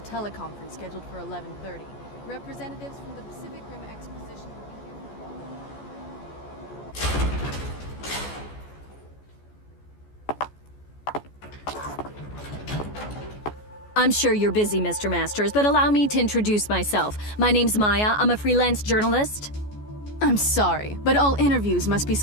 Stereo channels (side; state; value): right; late; 14 ms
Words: scheduled for 11:30. Representatives from the Pacific Rim Exposition will be here. I'm sure you're busy, Mr. Masters, but allow me to introduce myself. My name's Maya. I'm a freelance journalist. I'm sorry, but all interviews must be